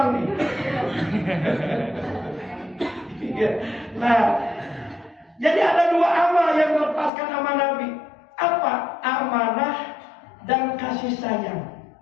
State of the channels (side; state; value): right; drops out; at 7.1 s